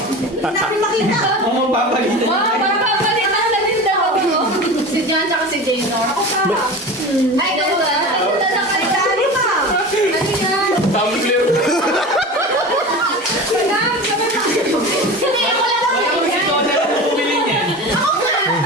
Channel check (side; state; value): both; normal; correlation 0.31